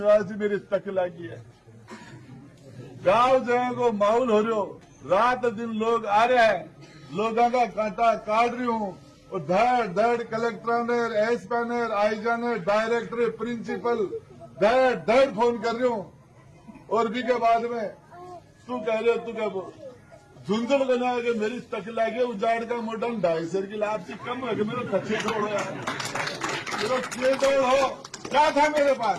जी मेरी तक लगी है, गांव जगह को माहौल हो रहे हो, रात दिन लोग आ रहे हैं, लोगों का कांटा काट रही हूं, और धड़ धड़ कलेक्टर ने, एसपी ने, आईजा ने, डायरेक्टर, प्रिंसिपल धड़ धड़ फोन कर रही हूं। और भी के बाद में तू कह रहे हो, तू क्या बोल झुंझुन बना के मेरी तक लागे, उजाड़ का मोटा 250 की लाभ कम है कि मेरे कच्चे तोड़ यार, मेरा के तोड़ हो क्या था मेरे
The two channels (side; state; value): both; identical; correlation 1.00